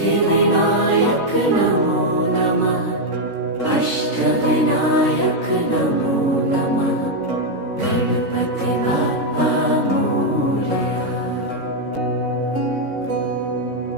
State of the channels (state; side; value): late; left; 3.8 ms